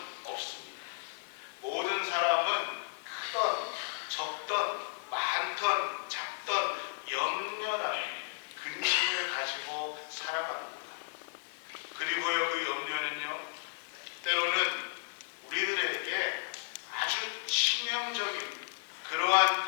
없습니다. 모든 사람은 크던 적던 많던 작던 염려라는 근심을 가지고 살아갑니다. 그리고요, 그 염려는요, 때로는 우리들에게 아주 치명적인 그러한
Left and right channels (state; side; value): silent; right; 55 dB below the other